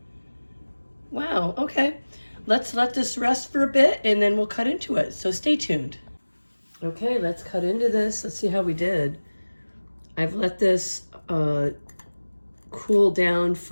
Wow, okay. Let's let this rest for a bit and then we'll cut into it. So stay tuned. Okay, let's cut into this. Let's see how we did. I've let this cool down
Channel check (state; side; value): inverted; both; correlation -1.00